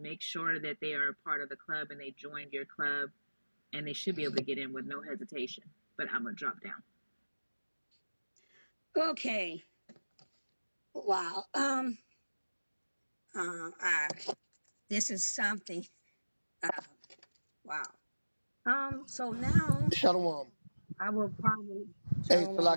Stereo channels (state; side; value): inverted; both; correlation -1.00